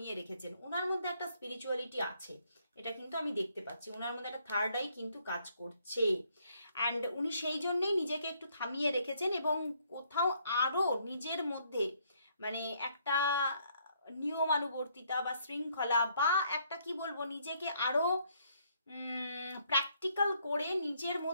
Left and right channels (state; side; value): inverted; both; correlation -0.69